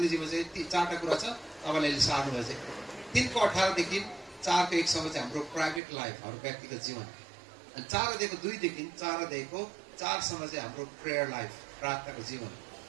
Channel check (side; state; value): left; drops out; at 5.8 s